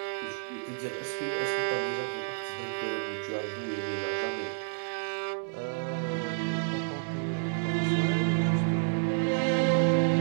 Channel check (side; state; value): left; silent; 58 dB below the other